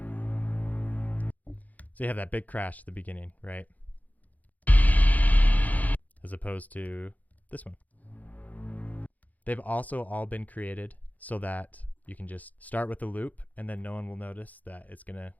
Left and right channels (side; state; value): right; late; 0.078 ms